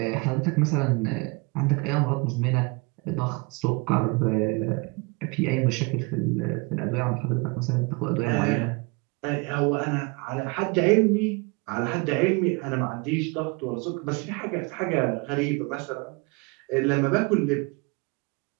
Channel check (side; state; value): left; quieter; 28.4 dB